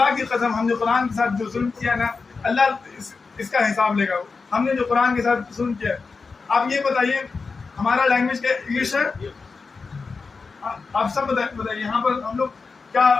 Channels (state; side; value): quieter; right; 4.5 dB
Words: کی قسم ہم نے قرآن کے ساتھ جو ظلم کیا نا اللہ اس کا حساب لے گا۔ ہم نے جو قرآن کے ساتھ ظلم کیا، آپ یہ بتائیے ہمارا لینگویج کیا انگلش ہے؟ آپ سب بتائیے یہاں پر ہم